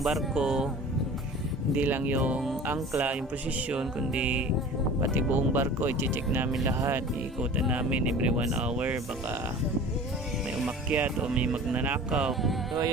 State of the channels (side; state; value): both; normal; correlation 0.41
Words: Hindi lang yung angkla, yung posisyon, kundi pati buong barko i-check namin lahat. Iikutan namin every 1 hour, baka may umakyat o may magnanakaw. So